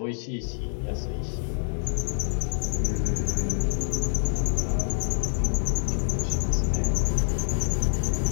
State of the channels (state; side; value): silent; right; digital silence